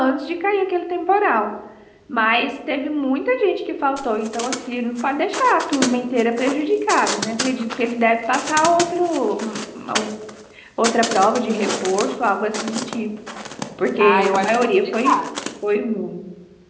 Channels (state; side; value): identical; both; correlation 1.00